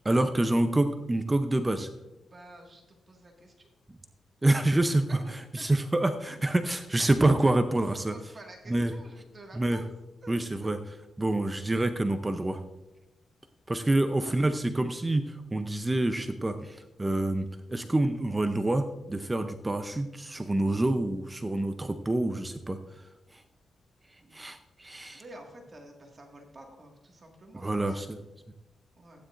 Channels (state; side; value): normal; both; correlation 0.97